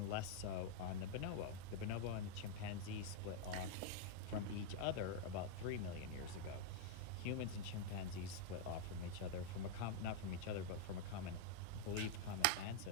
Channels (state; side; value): different; both; correlation 0.00